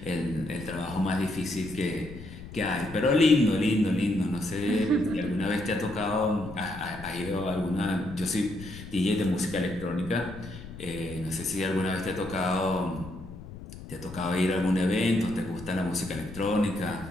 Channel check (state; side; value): noise; left; rumble, 14 dB below the sound